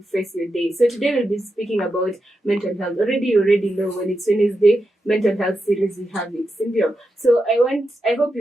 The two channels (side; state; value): both; normal; correlation 0.87